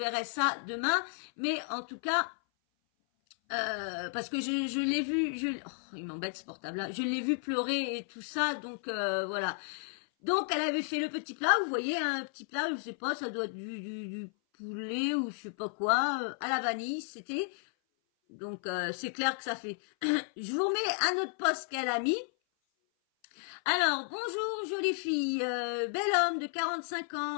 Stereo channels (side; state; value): right; silent; 56 dB below the other